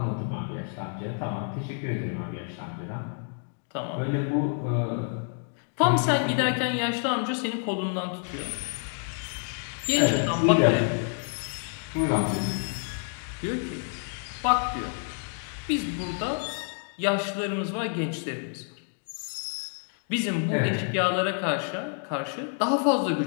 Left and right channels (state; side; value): silent; right; 55 dB below the other